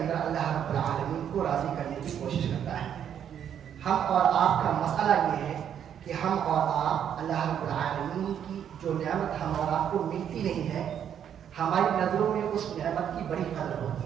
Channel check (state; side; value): quieter; left; 9.1 dB